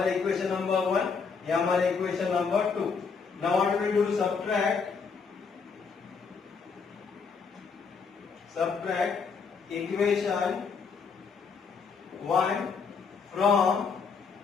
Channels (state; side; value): quieter; right; 5.4 dB